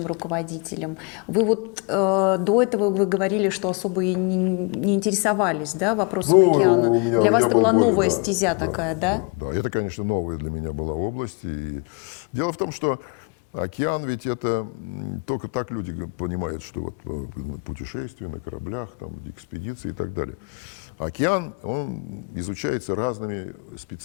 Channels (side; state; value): right; quieter; 31.9 dB